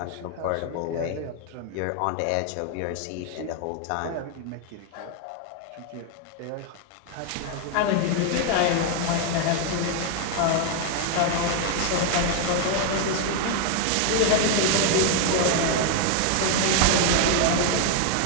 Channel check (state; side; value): different; both; correlation 0.00